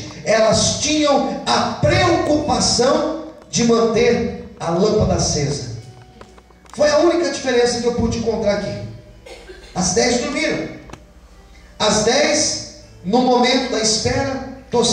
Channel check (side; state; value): both; identical; correlation 1.00